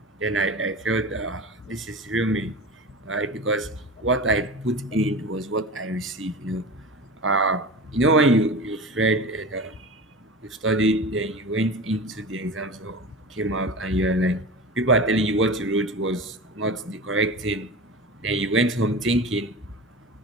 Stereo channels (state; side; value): normal; both; correlation 0.31